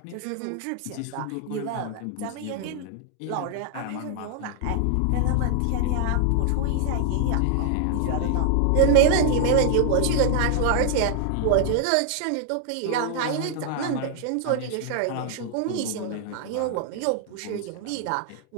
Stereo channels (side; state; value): both; different; correlation 0.00